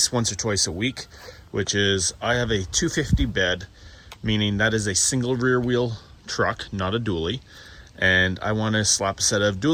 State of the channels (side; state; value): both; identical; correlation 1.00